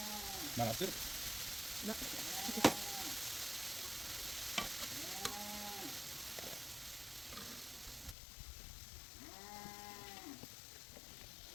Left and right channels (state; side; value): drops out; right; at 8.2 s